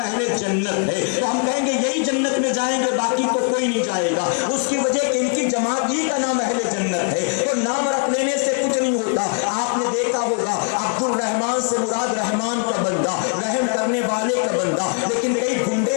جنت ہے، تو ہم کہیں گے یہی جنت میں جائیں گے، باقی تو کوئی نہیں جائے گا۔ اس کی وجہ کہ ان کی جماعت ہی کا نام اہل جنت ہے، تو نام رکھ لینے سے کچھ نہیں ہوتا۔ آپ نے دیکھا ہوگا عبد الرحمان سے مراد رحمان کا بندہ، رحم کرنے والے کا بندہ، لیکن کئی گنڈے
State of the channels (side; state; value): right; quieter; 38.3 dB